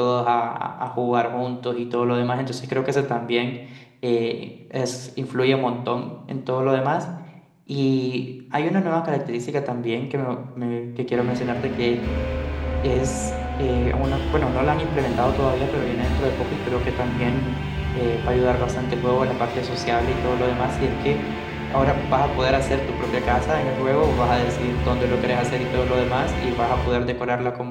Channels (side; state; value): both; identical; correlation 1.00